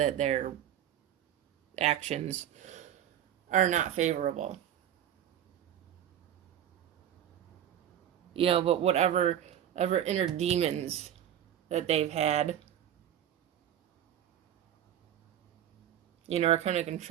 their actions are not favorable. You know, but whatever inner demons that they've had, you know, are kind of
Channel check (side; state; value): left; quieter; 10.5 dB